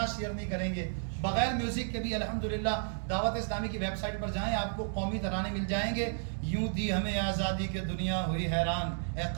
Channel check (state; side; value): silent; left; digital silence